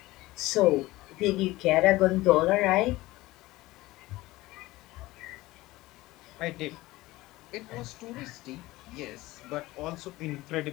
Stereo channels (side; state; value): right; quieter; 18.8 dB